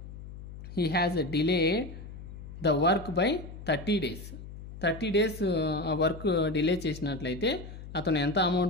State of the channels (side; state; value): left; noise; hum, 13 dB below the sound